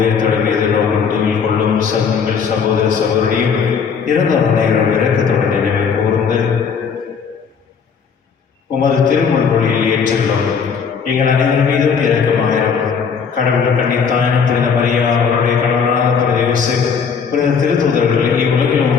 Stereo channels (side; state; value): right; quieter; 6.3 dB